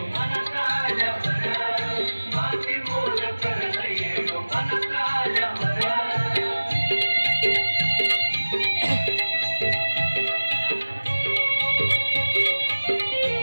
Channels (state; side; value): inverted; both; correlation -1.00